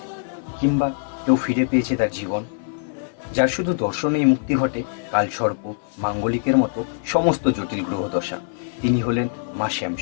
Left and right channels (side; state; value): right; silent; 58 dB below the other